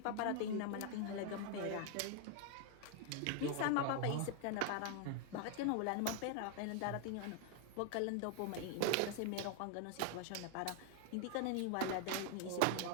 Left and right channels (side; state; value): both; different; correlation 0.00